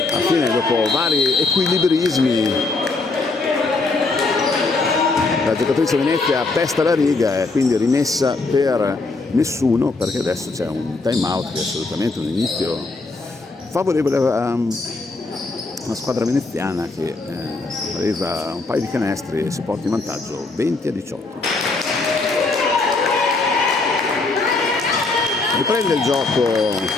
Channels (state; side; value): quieter; right; 3.5 dB